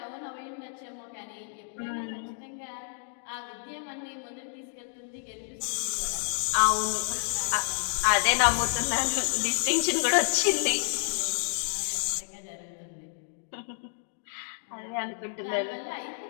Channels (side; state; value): right; silent; digital silence